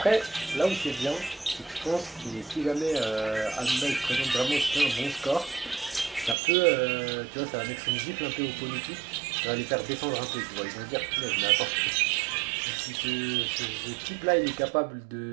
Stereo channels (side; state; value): left; drops out; at 6.4 s